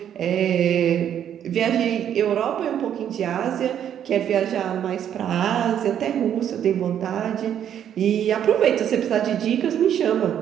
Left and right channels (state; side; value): quieter; left; 9.6 dB